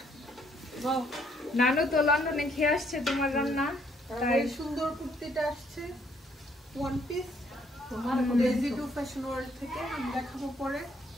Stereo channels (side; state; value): both; normal; correlation 0.67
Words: নানু তো লন্ডনে খেয়ে আসছে তোমার রান্না, তাই সুন্দর কুর্তিটা আসছে one piece Daisy to fashion world থেকে। আমি দেখাবো পরে।